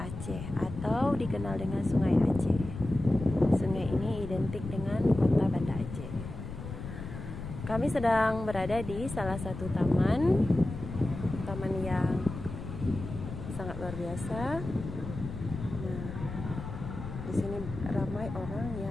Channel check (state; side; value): noise; left; rumble, 9 dB below the sound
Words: atau dikenal dengan Sungai Aceh. Sungai ini identik dengan kota Banda Aceh. Kami sedang berada di salah satu taman yang sangat luar biasa. Di sini ramai orang